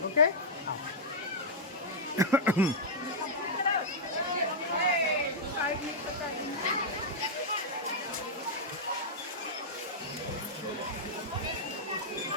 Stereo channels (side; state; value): both; normal; correlation -0.09